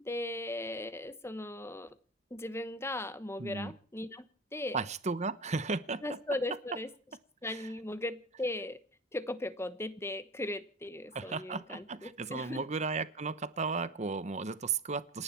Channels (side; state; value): both; normal; correlation 0.34